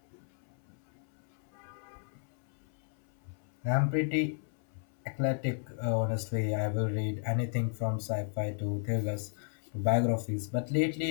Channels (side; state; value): right; silent; 55 dB below the other